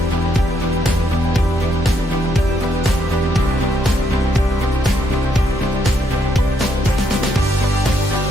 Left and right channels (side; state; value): both; normal; correlation 0.74